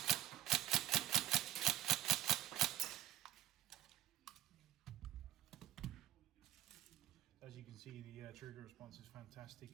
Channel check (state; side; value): quieter; left; 13.3 dB